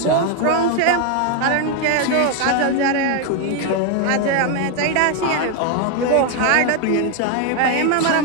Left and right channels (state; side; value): different; both; correlation 0.01